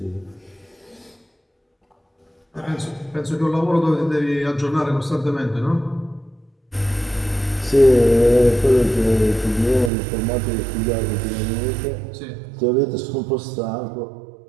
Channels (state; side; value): drops out; left; at 9.9 s